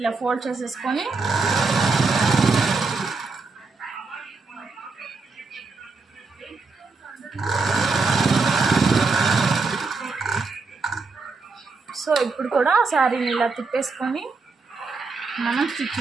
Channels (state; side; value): quieter; left; 4.2 dB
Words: ఫోల్డ్ చేసేసుకొని సో ఇప్పుడు కూడా శారీని ఇలా తిప్పేసుకొని మనం స్టిచ్